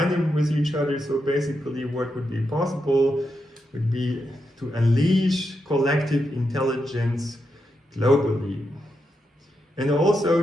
them with each other. So basically what would be possible would be to unleash collective intelligence globally, and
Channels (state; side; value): normal; both; correlation 0.85